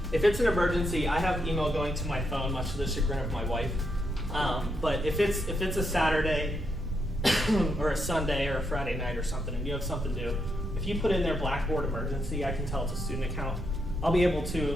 if it's an emergency. I have email going to my phone, much to the chagrin of my wife. But if it's a Saturday or a Sunday or a Friday night or something, and you have something to do, if you put in there Blackboard emergency, I can tell it's a student account. I'll be able to,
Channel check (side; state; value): right; noise; rumble, 8 dB below the sound